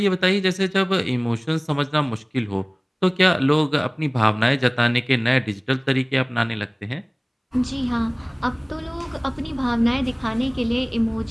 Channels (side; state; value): both; identical; correlation 1.00